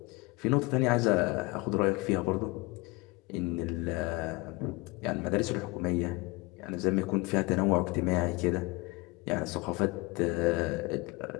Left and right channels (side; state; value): right; quieter; 24.9 dB